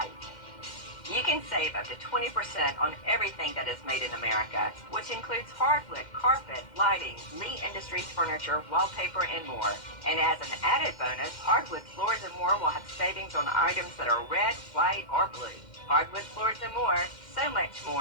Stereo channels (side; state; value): right; late; 2.1 ms